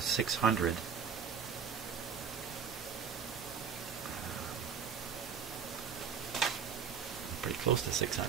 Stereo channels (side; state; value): left; quieter; 6.9 dB